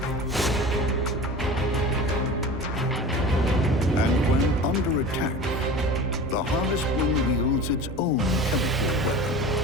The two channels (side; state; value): both; normal; correlation 0.36